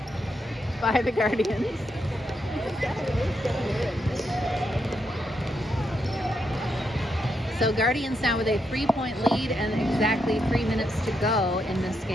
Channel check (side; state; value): both; normal; correlation 0.81